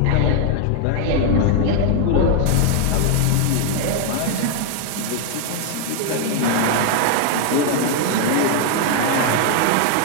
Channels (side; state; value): both; different; correlation 0.00